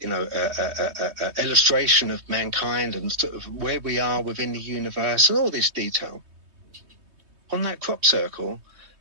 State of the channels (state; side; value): late; left; 3.2 ms